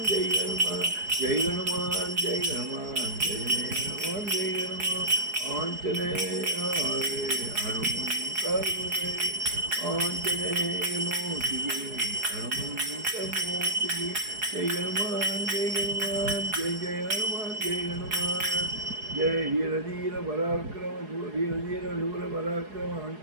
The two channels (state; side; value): late; left; 4.8 ms